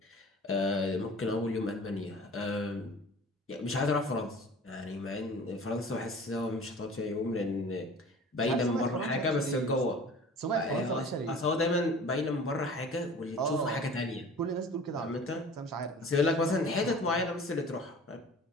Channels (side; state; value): both; normal; correlation 0.43